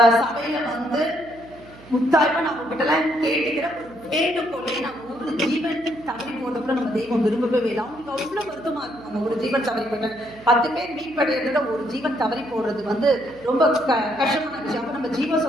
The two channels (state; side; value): noise; right; hum, 21 dB below the sound